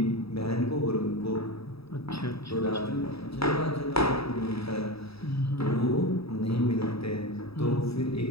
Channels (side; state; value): right; late; 0.77 ms